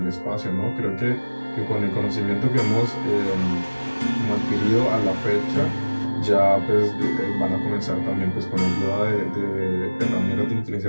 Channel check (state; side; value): inverted; both; correlation -1.00